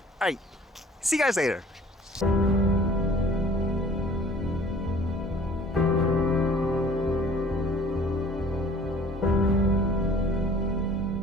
Alright, see you guys later.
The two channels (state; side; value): normal; both; correlation 0.51